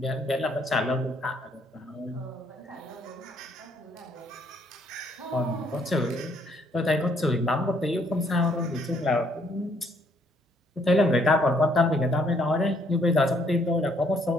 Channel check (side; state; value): both; normal; correlation 0.68